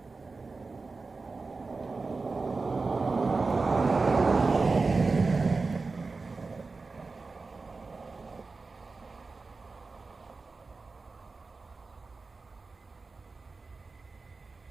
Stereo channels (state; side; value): quieter; left; 4.0 dB